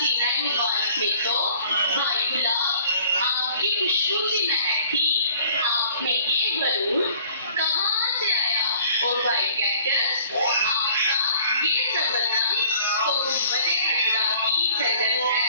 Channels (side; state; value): both; inverted; correlation -0.54